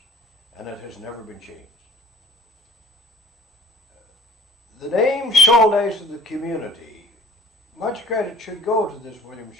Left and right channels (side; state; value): both; normal; correlation 0.51